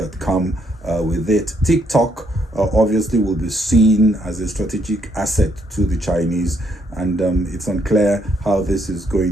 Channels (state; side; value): normal; both; correlation 0.72